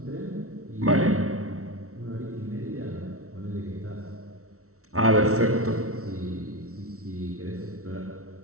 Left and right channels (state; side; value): late; left; 0.63 ms